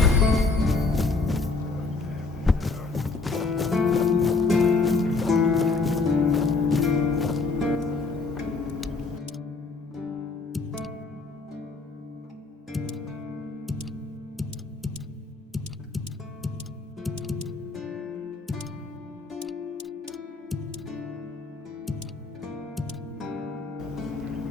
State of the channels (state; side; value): quieter; right; 3.9 dB